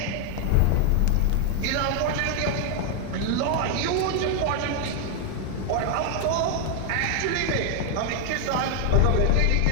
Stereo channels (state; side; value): different; both; correlation 0.00